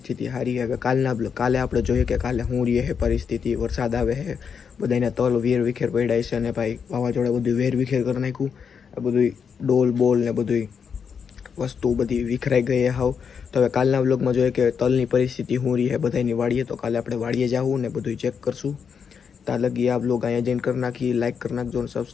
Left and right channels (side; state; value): right; quieter; 6.6 dB